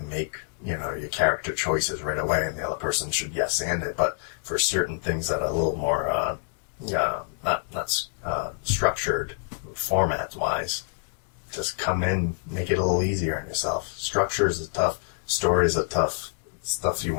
make, you know, your character choices right away, and the other person should yes and it. But for certain things that are a little more not structured format wise, just come in, make it a little easier on yourself. Structures is tough. Stories are tough. Stuff you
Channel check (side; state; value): right; silent; digital silence